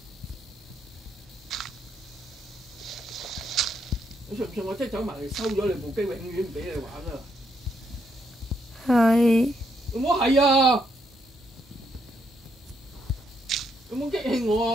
你信唔信我即係走埋嚟收咗你部機，永遠唔俾你玩啊！係。有冇係啊？有冇激氣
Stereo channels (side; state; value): both; normal; correlation 0.76